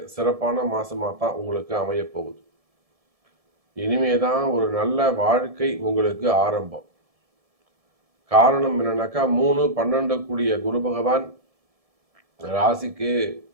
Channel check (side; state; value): left; late; 1.7 ms